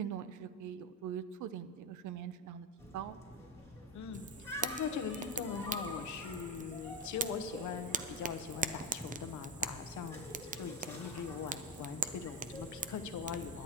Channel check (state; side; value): normal; both; correlation 0.12